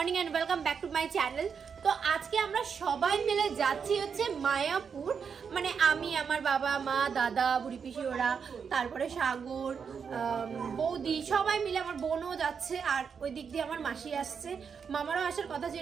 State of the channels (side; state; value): left; quieter; 6.4 dB